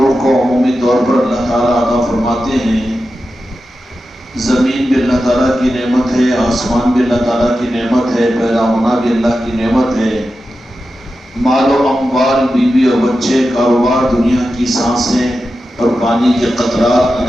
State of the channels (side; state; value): both; normal; correlation 0.91